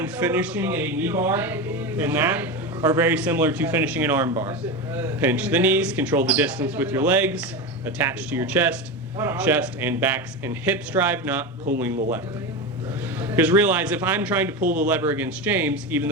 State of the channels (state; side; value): normal; both; correlation 0.20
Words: finishing a knee bar and that are very similar to finishing an arm bar. Pinch the knees, control the distance with your legs, attach to your chest and backs and hips drive, not pulling the lever. Because realize if I'm trying to pull the lever against James, even